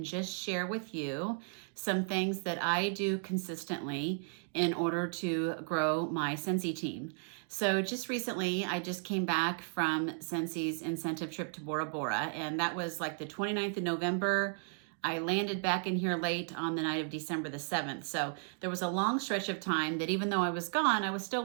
just share with you some things that I do consistently in order to grow my Scentsy team. So just recently, I just came back from Scentsy's incentive trip to Bora Bora, and that was like the 29th of November. I landed back in here late on the night of December the 7th. So there was a long stretch of time that even though I was gone, I was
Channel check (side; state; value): left; silent; 55 dB below the other